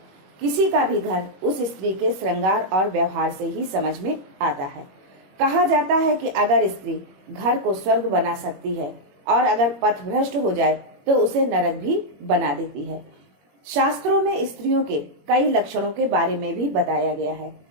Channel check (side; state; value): left; late; 21 ms